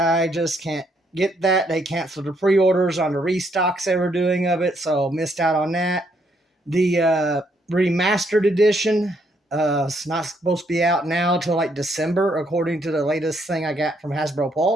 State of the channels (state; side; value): normal; both; correlation 0.72